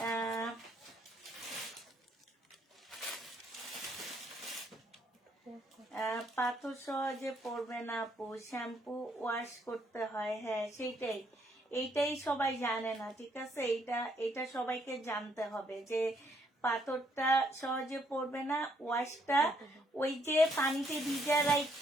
পাথর সহজে পড়বে না আপু, শ্যাম্পু ওয়াশ করতে হয়। হ্যাঁ সেইটাই, এইটাই সবাই জানে না। ঠিক আছে, এইটা সবাইকে জানতে হবে যে পাথরটা সহজে পড়বে না। ওয়াশটা ওই যে পানিতে ভিজা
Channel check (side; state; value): both; normal; correlation 0.70